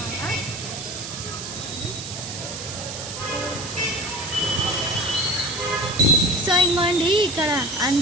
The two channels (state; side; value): noise; right; hiss, 8 dB below the sound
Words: సో ఇంకోండి ఇక్కడ